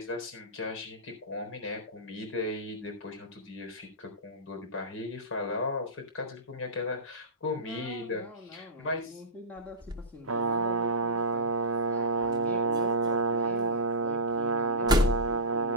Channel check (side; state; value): both; normal; correlation -0.15